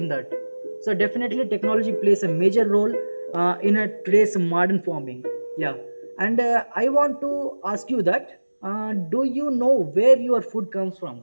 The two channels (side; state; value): both; inverted; correlation -1.00